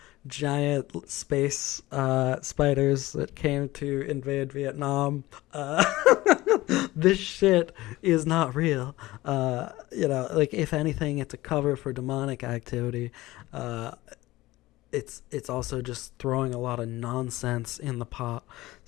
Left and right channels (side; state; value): right; quieter; 18.3 dB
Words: giant space spiders that came to invade Vietnam. This shit is not real. You know, like, if anything, it's a cover for demonic activity. It's also just throwing a lot of nonsense in the pot.